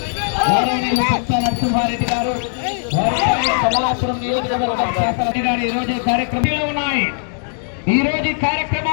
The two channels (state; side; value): silent; right; digital silence